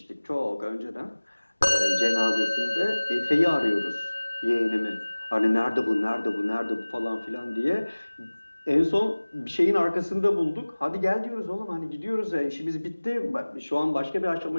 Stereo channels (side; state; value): both; inverted; correlation -1.00